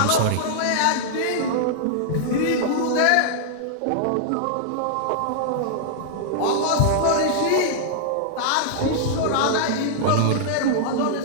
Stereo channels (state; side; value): different; both; correlation -0.01